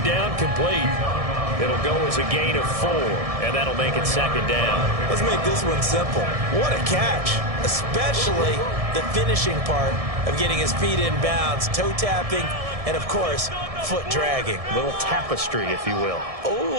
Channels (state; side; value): late; left; 1.6 ms